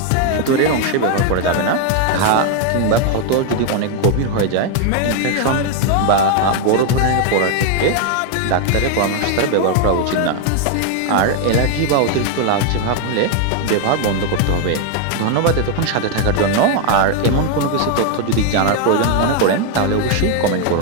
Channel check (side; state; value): both; different; correlation 0.01